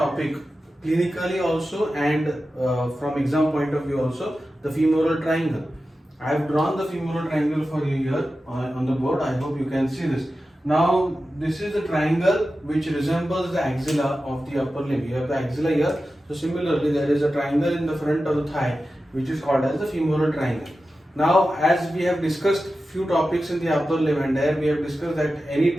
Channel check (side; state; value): both; normal; correlation 0.93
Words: clinically also and from exam point of view also, the femoral triangle. I have drawn the femoral triangle for you here on the board. I hope you can see this. Now this is the triangle which resembles the axilla of the upper limb. You have the axilla here. So similarly there is a triangle in the front of the thigh which is called as the femoral triangle. Now as we have discussed few topics in the upper limb, and there we have discussed that any